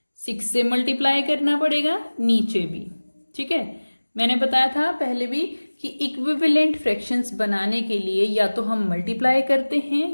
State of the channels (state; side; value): inverted; both; correlation -1.00